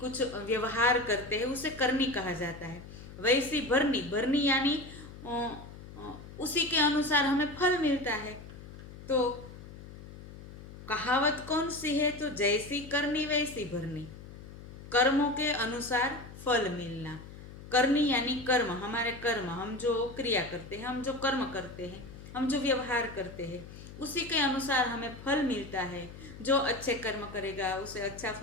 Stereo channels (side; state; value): left; noise; hum, 15 dB below the sound